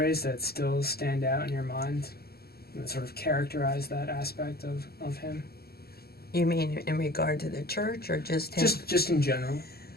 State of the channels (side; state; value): right; late; 0.45 ms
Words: that still stand out in your mind that sort of characterize that aspect of him? You mean in regard to the church or just him? Just in general.